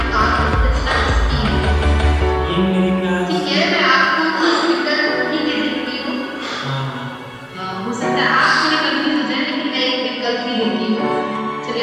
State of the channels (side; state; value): both; identical; correlation 1.00